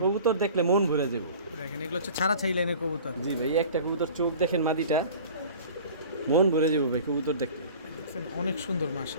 কবুতর দেখলে মন ভরে যাবে। দেখেন এগুলো হচ্ছে ছাড়া ছাই লাইনের কবুতর। জি ভাই, একটা কবুতর চোখ দেখেন মাদিটা, মন ভরে যাবে ভাই কবুতর দেখলে। দেখছেন অনেক সুন্দর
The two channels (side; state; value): both; inverted; correlation -0.43